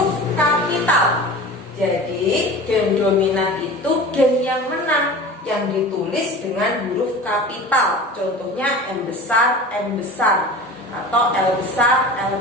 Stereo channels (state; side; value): normal; both; correlation 0.36